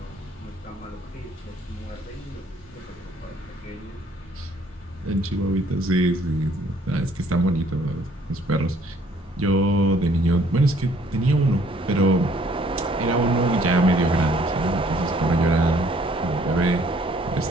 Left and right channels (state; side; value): normal; both; correlation 0.61